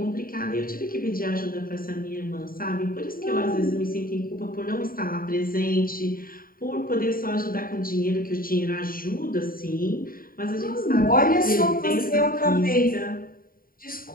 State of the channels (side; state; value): right; late; 0.42 ms